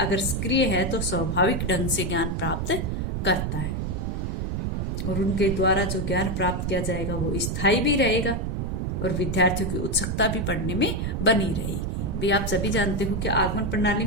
सक्रिय है तो स्वाभाविक ढंग से ज्ञान प्राप्त करता है। और उनके द्वारा जो ज्ञान प्राप्त किया जाएगा वो स्थायी भी रहेगा और विद्यार्थियों की उत्सुकता भी पढ़ने में बनी रहेगी। भाई आप सभी जानते हो कि आगमन प्रणाली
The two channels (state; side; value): noise; right; rumble, 1 dB below the sound